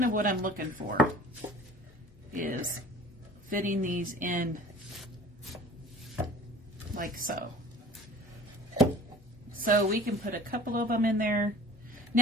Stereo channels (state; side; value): normal; both; correlation 0.45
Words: of what I'm looking for, is fitting these in like so. So we can put a couple of them in there.